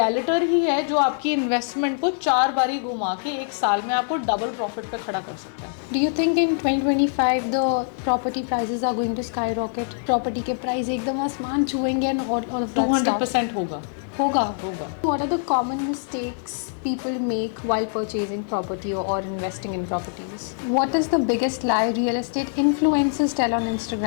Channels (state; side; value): silent; right; digital silence